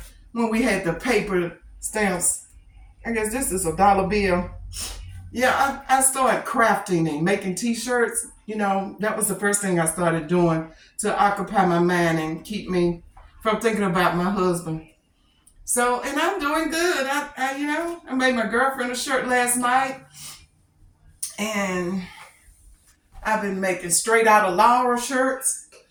when we had the paper stamps. I guess this is a dollar bill. Yeah, I started crafting and making t-shirts. You know, that was the first thing I started doing to occupy my mind and keep me from thinking about my husband. So, and I'm doing good. I made my girlfriend a shirt last night, and I've been making straight out of Laura shirts.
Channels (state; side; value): identical; both; correlation 1.00